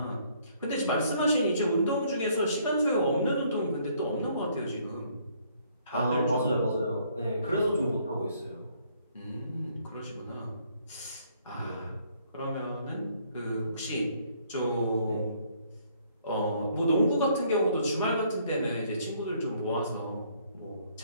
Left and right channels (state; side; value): inverted; both; correlation -0.65